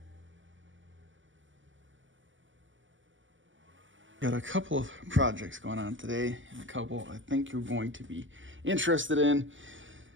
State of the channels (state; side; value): late; left; 0.56 ms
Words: Got a couple of projects going on today, and a couple I think you're going to be interested in,